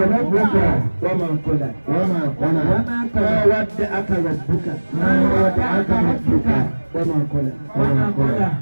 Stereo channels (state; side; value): inverted; both; correlation -1.00